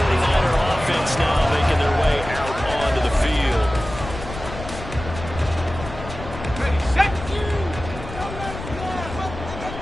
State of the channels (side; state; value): left; noise; rumble, 10 dB below the sound